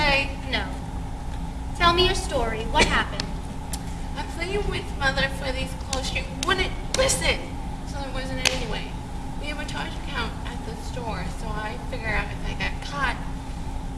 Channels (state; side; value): identical; both; correlation 1.00